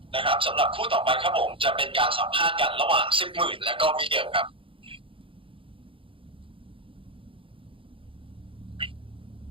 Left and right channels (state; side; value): late; left; 0.25 ms